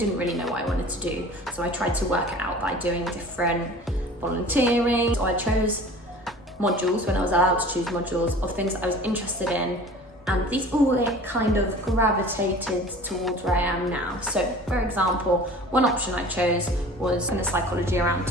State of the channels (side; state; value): both; normal; correlation 0.43